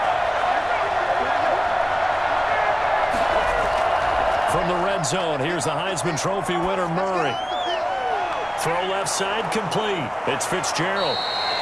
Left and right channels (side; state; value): both; identical; correlation 1.00